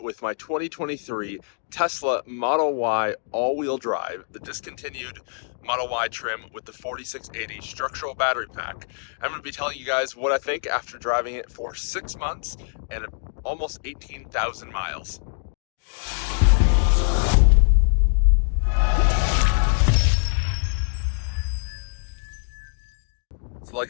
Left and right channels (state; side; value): silent; right; digital silence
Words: with my 2023 Tesla Model Y all-wheel drive, the discontinued Model Y trim with the 4680 structural battery pack. I'm going to be telling you guys what I think after driving it for 6 months and almost 18,000 miles. So